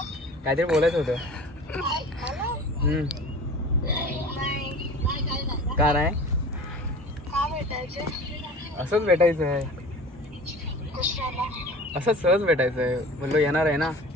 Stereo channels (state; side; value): normal; both; correlation 0.40